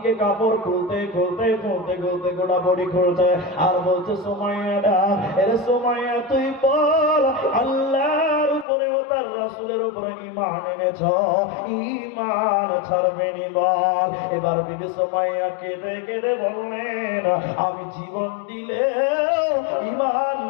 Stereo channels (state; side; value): drops out; right; at 8.7 s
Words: কাপড় খুলতে খুলতে খুলতে খুলতে গোটা বডি খুলছে, আর বলছে, সুমাইয়া ডাক, এরে সুমাইয়া তুই বল, আল্লাহর উপরে ও তার রাসূলের উপরে ঈমান এনেছ, ঈমান ছাড়বে নি বল। এবার বিবি সুমাইয়া কেঁদে কেঁদে বললেন, আমি জীবন দিলে ঈমান